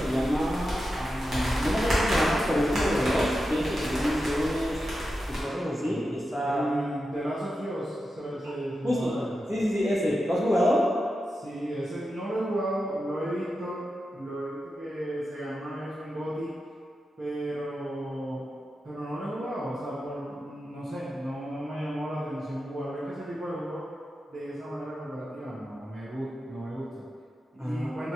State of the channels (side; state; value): both; normal; correlation 0.90